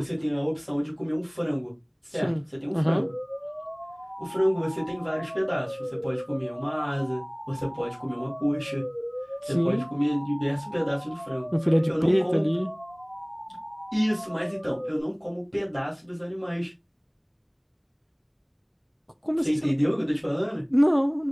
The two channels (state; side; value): identical; both; correlation 1.00